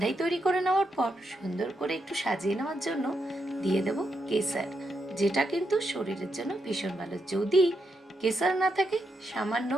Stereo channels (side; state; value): both; normal; correlation 0.82